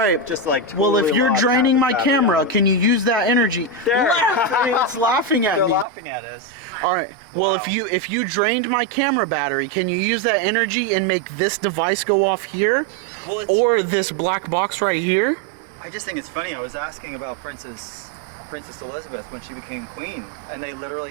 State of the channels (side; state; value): left; drops out; at 5.9 s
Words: just like Well, if totally you're lost draining half my the battery camera, on it. can you use that energy? There. It's laughing at They're me. laughing at us. All right. Well, Wow. if you drained my camera battery, can you use that energy and make this device go off here, Well, it's, or this black box right here? I just think it's funny. I was asking about Princess Elizabeth when she became queen, and they